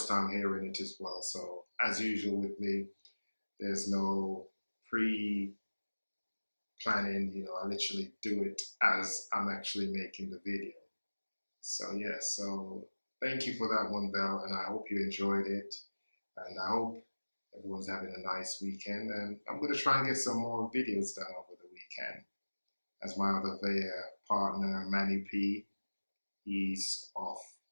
time hearing it as well. So as usual with me, there's no pre planning, I literally do it as I'm actually making the video. So yeah, so thank you for that one, Belle, and I hope you enjoyed it. And I hope everyone's having a nice weekend. And I'm gonna try and get some more videos done over the weekend. As my other partner, Manny P, he's off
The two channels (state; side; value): inverted; both; correlation -1.00